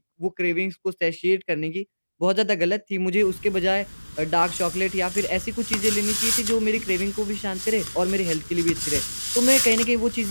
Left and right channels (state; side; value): inverted; both; correlation -1.00